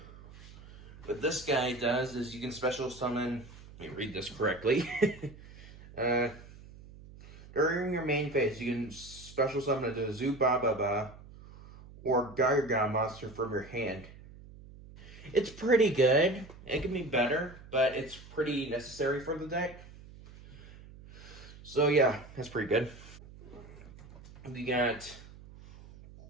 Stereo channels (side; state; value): right; noise; hum, 19 dB below the sound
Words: What this guy does is you can special summon, let me read this correctly. During your main phase, you can special summon a Zubababa or Gogogo monster from your hand. It's pretty good. It can be better, but it's pretty necessary for the deck. So yeah, that's pretty good. We got